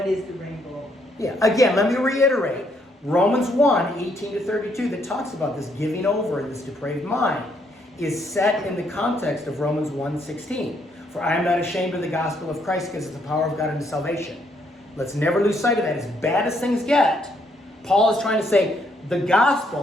is the rainbow? Yeah, again, let me reiterate. Romans 1, 18 to 32, that talks about this giving over and this depraved mind, is set in the context of Romans 1, 16. For I am not ashamed of the gospel of Christ, because it's the power of God unto salvation. Let's never lose sight of that. As bad as things get, Paul is trying to say the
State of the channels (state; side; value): normal; both; correlation 0.72